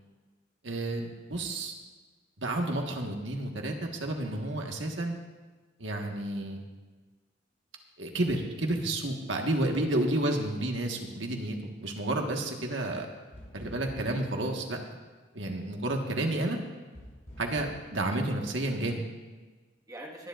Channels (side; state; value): both; normal; correlation 0.52